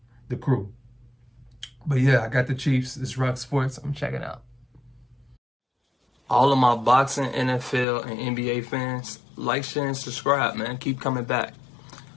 the crew. But yeah, I got the Chiefs. It's RocSports. I'm checking out. All of my boxing, NFL, and NBA fans, like, share, and subscribe, man. Keep coming back.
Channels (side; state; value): right; drops out; at 7.9 s